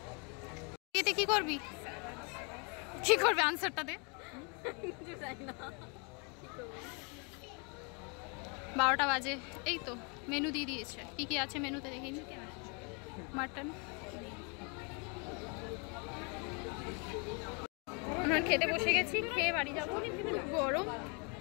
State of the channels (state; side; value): quieter; right; 34.5 dB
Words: এতে কি করবি? কি করবে আনসারটা দে। 12টা বাজে, এই তো মেনু দিয়ে দিয়েছে। কি কি আছে মেনুতে দেখিনি। মাটন। আমরা খেতে বসে গেছি, খেয়ে বাড়ি যাবো। গরম